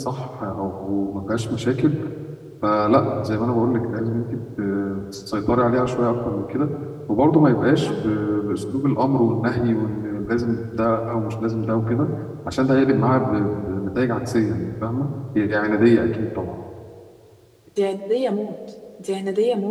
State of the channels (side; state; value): both; identical; correlation 1.00